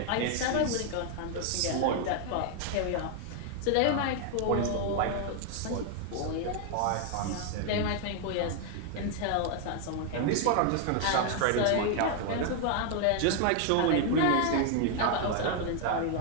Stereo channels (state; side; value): different; both; correlation 0.00